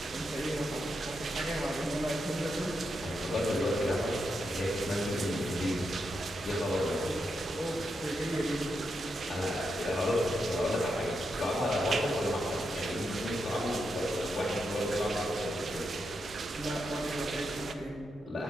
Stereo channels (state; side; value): normal; both; correlation 0.84